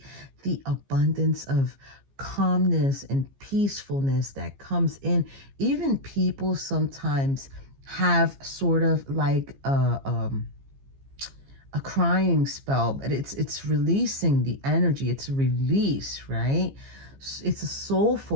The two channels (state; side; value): late; left; 15 ms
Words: The abundance of calmness and peacefulness that comes in. Even people sometimes have sort of like a crying spell, but it's releasing the energy. It's a release, right? It's a